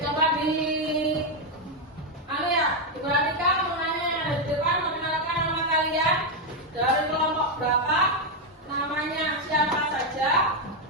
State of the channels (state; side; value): normal; both; correlation 0.03